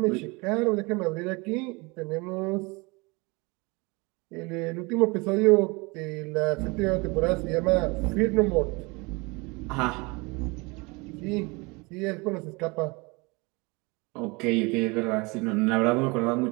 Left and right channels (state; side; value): quieter; left; 26.8 dB